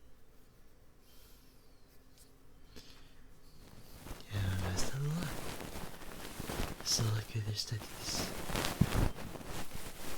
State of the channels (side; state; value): both; identical; correlation 1.00